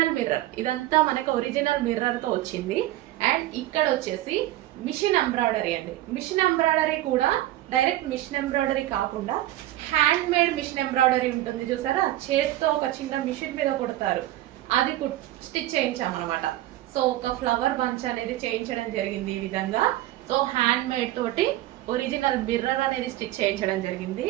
mirror. ఇదంతా మనకు ఒరిజినల్ మిర్రర్ తో వచ్చింది. అండ్ ఇక్కడ వచ్చేసి మిషన్ ఎంబ్రాయిడరీ అండి. మిషన్ ఎంబ్రాయిడరీ కూడా డైరెక్ట్ మిషన్ ఎంబ్రాయిడరీ కాకుండా హ్యాండ్ మేడ్ మిషన్ ఎంబ్రాయిడరీ ఉంటుంది చూసారా, చేతితో ఒక చిన్న మిషన్ మీద కుడతారు, అది స్టిచ్ చేయించామన్నమాట. సో ఒక ఫ్లవర్ బంచ్ అనేది చేయించడం జరిగింది ఈ విధంగా. సో హ్యాండ్ మేడ్ తోటి ఒరిజినల్ మిర్రర్ అనేది స్టిచ్ చేయించడం జరిగింది.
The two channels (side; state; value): left; quieter; 15.3 dB